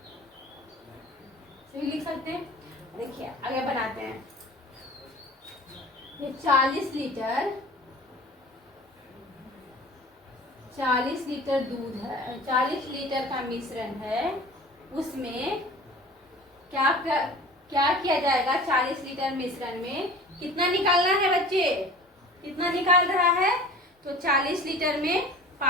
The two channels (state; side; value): normal; both; correlation 0.41